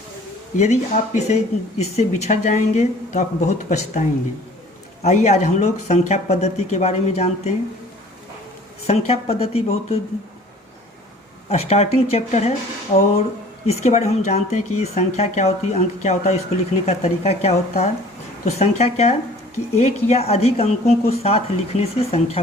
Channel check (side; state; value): both; normal; correlation 0.49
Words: यदि आप इससे बिछड़ जाएंगे तो आप बहुत पछताएंगे। आइए आज हम लोग संख्या पद्धति के बारे में जानते हैं। संख्या पद्धति बहुत स्टार्टिंग चैप्टर है और इसके बारे में हम जानते हैं कि संख्या क्या होती है, अंक क्या होता है, इसको लिखने का तरीका क्या होता है। तो संख्या क्या है कि एक या अधिक अंकों को साथ लिखने से